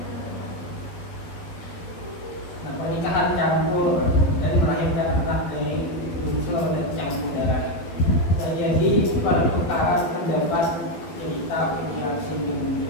Nah, pernikahan campur dan melahirkan anak dari unsur dan campur darah. Terjadi pertukaran pendapat, cerita, interaksi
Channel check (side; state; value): right; late; 12 ms